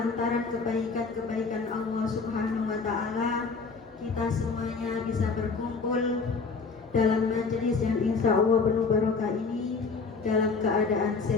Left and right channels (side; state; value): right; quieter; 4.6 dB